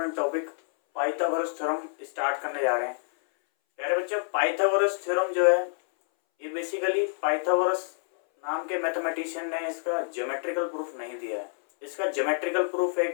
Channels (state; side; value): silent; right; 59 dB below the other